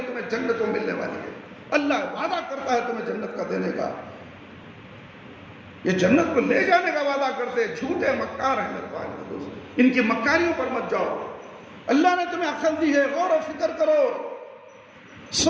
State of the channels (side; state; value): both; identical; correlation 1.00